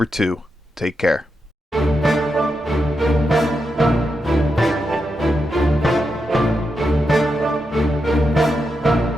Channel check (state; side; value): normal; both; correlation 0.86